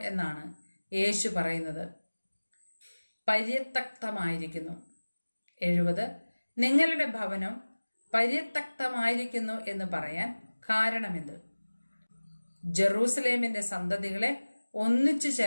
എന്നാണ് യേശു പറയുന്നത്? പര്യത്യക്തമായിരിക്കുന്നു. 70. നിങ്ങളുടെ ഭവനം പര്യത്യക്തമായിരിക്കുന്നു എന്ന് പറയാൻ കാരണമെന്ത്? ജെറൂസലേമിന്റെ സന്തതികളെ ഒന്നിച്ചു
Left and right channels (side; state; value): both; inverted; correlation -1.00